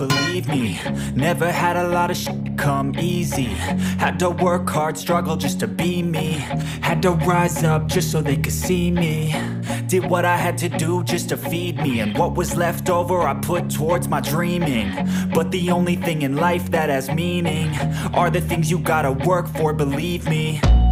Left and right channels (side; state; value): both; identical; correlation 1.00